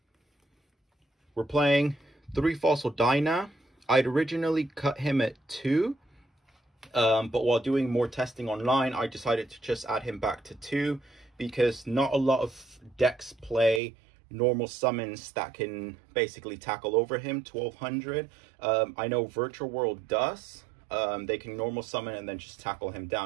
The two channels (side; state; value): left; drops out; at 13.8 s